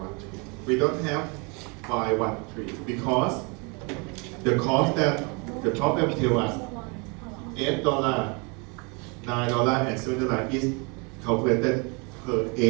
We don't have Y13 because the cost that the problem tells us $8, $9, and $7 is calculated per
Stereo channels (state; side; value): quieter; left; 31.5 dB